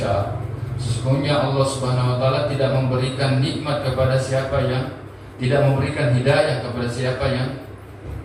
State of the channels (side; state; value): both; identical; correlation 1.00